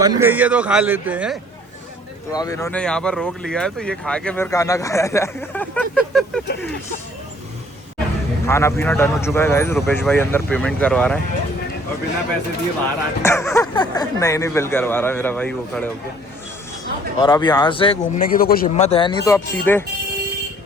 गई है तो खा लेते हैं। तो अब इन्होंने यहाँ पर रोक लिया है तो ये खा के फिर खाना खाया जाएगा। खाना पीना डन हो चुका है गाइस। रुपेश भाई अंदर पेमेंट करवा रहे हैं और बिना पैसे दिए बाहर आ नहीं बिल करवा रहा है मेरा भाई वो खड़े होके। और अब यहाँ से घूमने की तो कुछ हिम्मत है नहीं तो अब सीधे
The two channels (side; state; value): both; normal; correlation 0.56